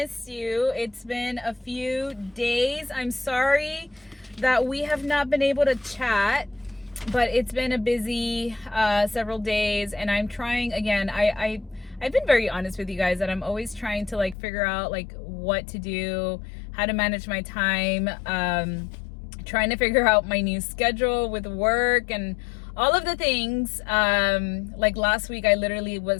you. It's been a few days. I'm sorry that we have not been able to chat, but it's been a busy several days, and I'm trying again. I've been very honest with you guys that I'm always trying to figure out what to do, how to manage my time, trying to figure out my new schedule with work and all of the things. Like last week, I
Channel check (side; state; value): right; drops out; at 14.4 s